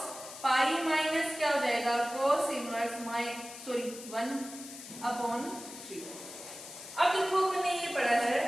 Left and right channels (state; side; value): noise; left; hiss, 13 dB below the sound